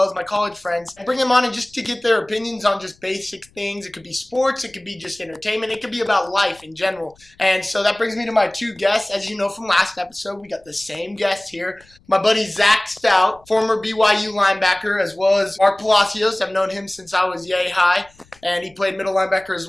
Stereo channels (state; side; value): noise; left; rumble, 30 dB below the sound